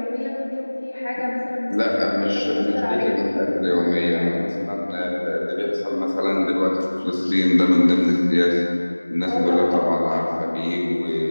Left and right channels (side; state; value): both; inverted; correlation -1.00